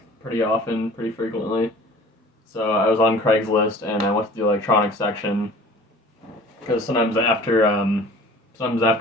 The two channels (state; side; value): normal; both; correlation 0.45